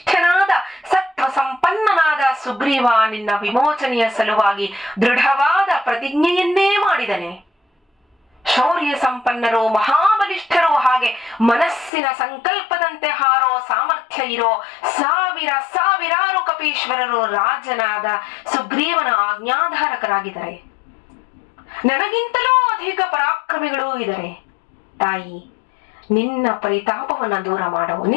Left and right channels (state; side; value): drops out; right; at 11.9 s